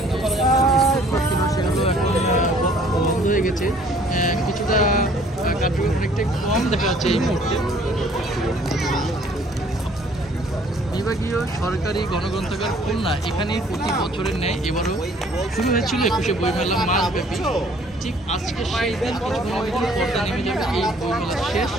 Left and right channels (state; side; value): normal; both; correlation 0.58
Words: সেগুলো এখন বন্ধ হয়ে গেছে, কিছুটা কার্যক্রম অনেকটাই কম দেখা যাচ্ছে এই মুহূর্তে। বিভাগীয় সরকারি গণগ্রন্থাগার খুলনা এখানে প্রতি বছরের ন্যায় এবারও শুরু হয়েছিল 21শে বইমেলা মাসব্যাপী। ঠিক আজকে সেই দিন কিছুক্ষণ পর্দা নেমে যাবে এই বইমেলা শেষ।